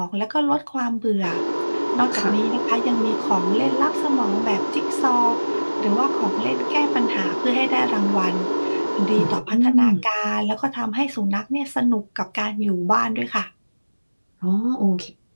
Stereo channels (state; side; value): inverted; both; correlation -1.00